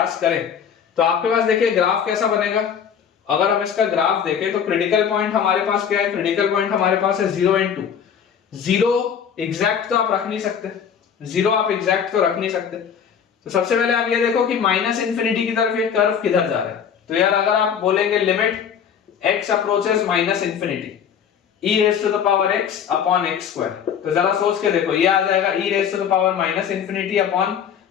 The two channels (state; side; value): quieter; right; 7.9 dB